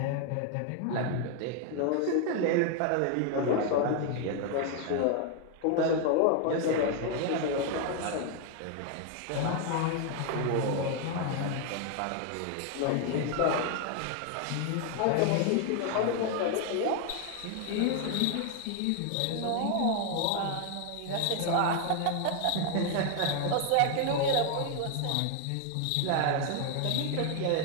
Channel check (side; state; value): both; different; correlation 0.00